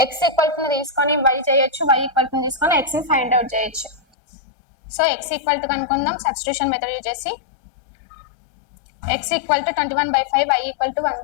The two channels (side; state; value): right; drops out; at 4.0 s